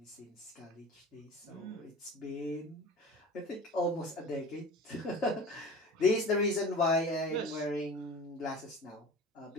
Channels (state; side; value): normal; both; correlation 0.37